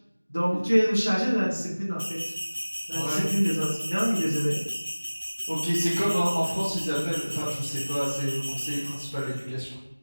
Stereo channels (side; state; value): both; inverted; correlation -1.00